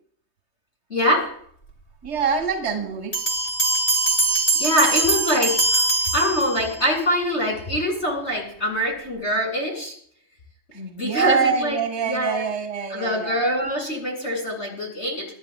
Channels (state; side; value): late; right; 3.2 ms